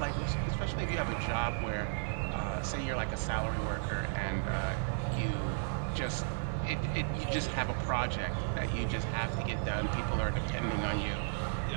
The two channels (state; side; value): silent; left; digital silence